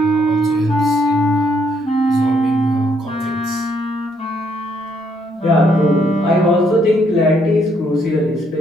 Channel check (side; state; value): both; normal; correlation 0.71